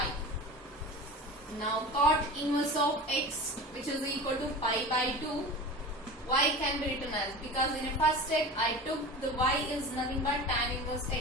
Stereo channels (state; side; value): normal; both; correlation 0.33